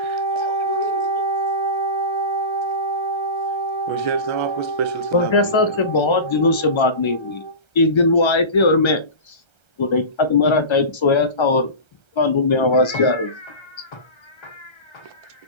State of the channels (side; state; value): right; late; 1.3 ms